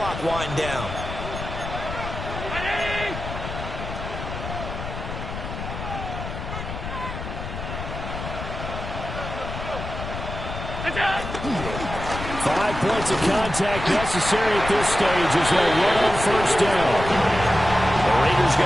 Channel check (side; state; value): left; noise; rumble, 7 dB below the sound